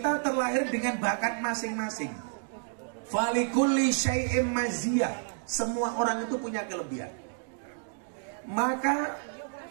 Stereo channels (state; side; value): silent; left; digital silence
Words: terlahir dengan bakat masing-masing. Falikulli syai'im maziyah. Semua orang itu punya kelebihan. Maka